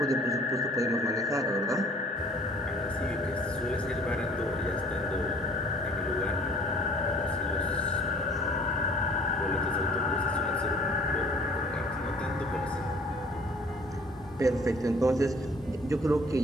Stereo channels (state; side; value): normal; both; correlation 0.54